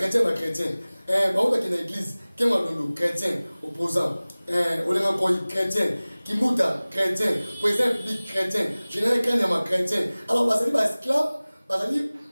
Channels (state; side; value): inverted; both; correlation -0.99